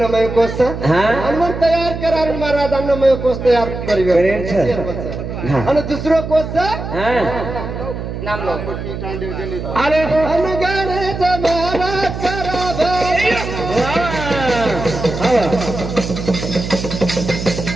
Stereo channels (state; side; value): noise; right; hum, 7 dB below the sound